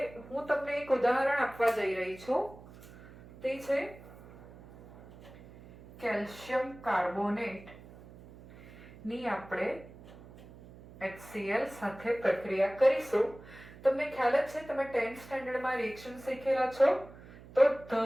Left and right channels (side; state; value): right; noise; hum, 19 dB below the sound